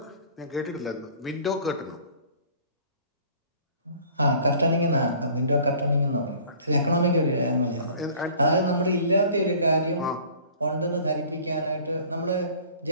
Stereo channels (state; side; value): inverted; both; correlation -0.49